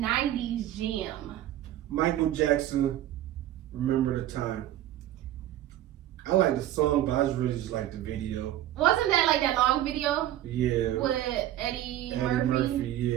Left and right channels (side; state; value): left; quieter; 13.1 dB